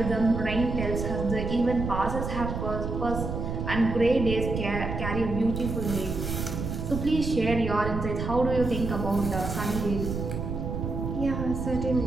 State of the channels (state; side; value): noise; right; rumble, 4 dB below the sound